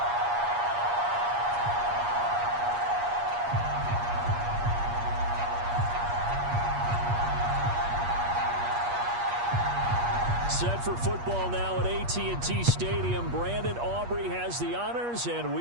Set for football now at AT&T Stadium. Brandon Aubrey has the honors, and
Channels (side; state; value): left; late; 8.4 ms